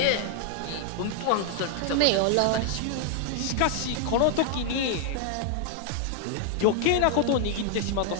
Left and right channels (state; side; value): different; both; correlation 0.00